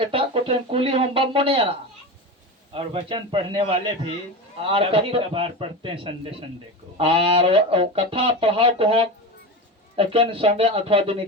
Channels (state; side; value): normal; both; correlation 0.24